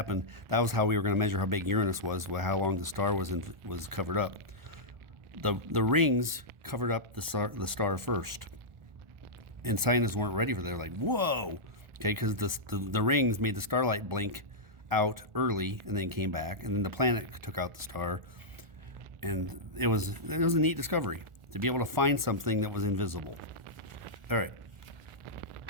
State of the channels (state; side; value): late; left; 1.4 ms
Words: that was how we were going to measure how big Uranus was, how long the star was covered up. The rings covered up the star first. And scientists weren't ready for that. They're like, whoa, okay, because the rings made the starlight blink out early and then came back, and then the planet took out the star, and it was a neat discovery to be able to find something that was invisible. All right,